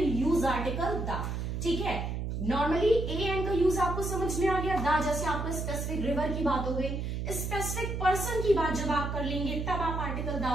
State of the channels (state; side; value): noise; right; hum, 3 dB below the sound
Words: use article the, ठीक है। नॉर्मली ए एन का यूज आपको समझ में आ गया, द जैसे आपको स्पेसिफिक रिवर की बात हो गई। स्पेसिफिक पर्सन की बात जब आप कर लेंगे तब आप आर्टिकल